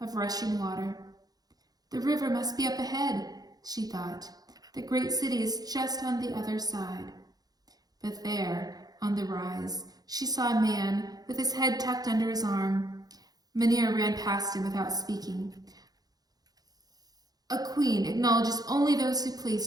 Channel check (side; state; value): left; late; 0.19 ms